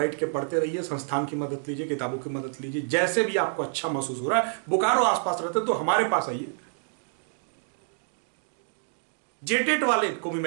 के पढ़ते रहिए, संस्थान की मदद लीजिए, किताबों की मदद लीजिए, जैसे भी आपको अच्छा महसूस हो रहा है। बोकारो आसपास रहते तो हमारे पास आइए। जेटेट वाले को भी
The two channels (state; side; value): silent; left; digital silence